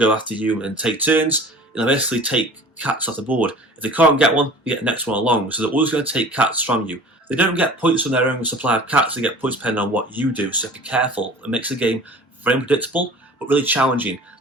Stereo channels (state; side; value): normal; both; correlation 0.43